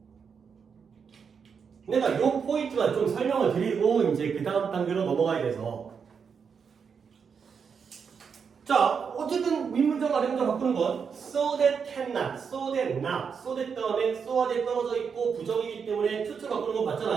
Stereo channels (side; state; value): left; quieter; 6.3 dB